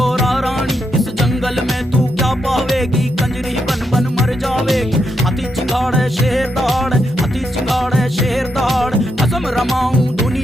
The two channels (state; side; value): normal; both; correlation 0.82